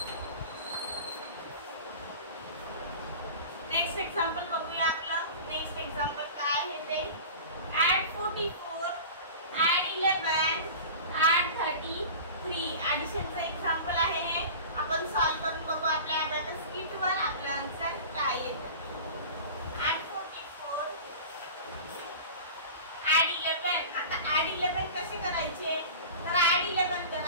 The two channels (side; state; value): both; inverted; correlation -0.36